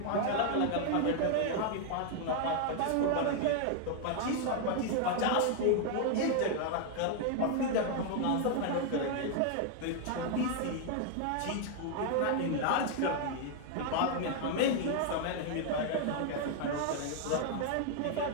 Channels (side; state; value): both; different; correlation 0.00